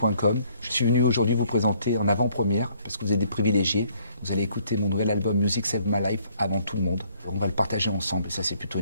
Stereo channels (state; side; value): inverted; both; correlation -0.64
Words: Je suis venu aujourd'hui vous présenter en avant-première, parce que vous êtes des privilégiés. Vous allez écouter mon nouvel album Music Save My Life avant tout le monde. On va le partager ensemble, et ça c'est plutôt